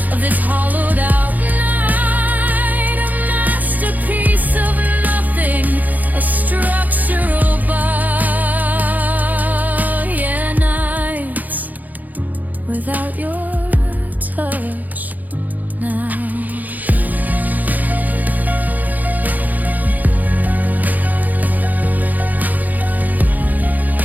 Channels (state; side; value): late; left; 0.081 ms